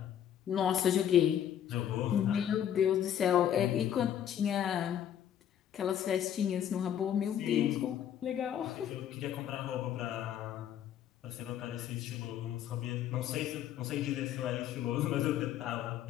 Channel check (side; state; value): right; quieter; 10.1 dB